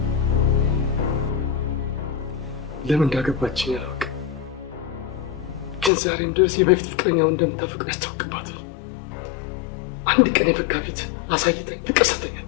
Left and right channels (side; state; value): right; drops out; at 5.9 s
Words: ለምን እንዳገባችኝ አላውቅም፣ ግን ዛሬም ድረስ የበፊት ፍቅረኛውን እንደምታፈቅር ያስታውቅባታል። አንድ ቀን የፈካ ፊት አሳይተኝ ፍቅር ሰተኝ